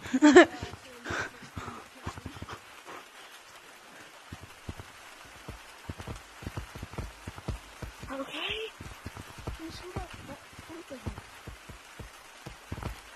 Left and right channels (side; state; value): both; identical; correlation 1.00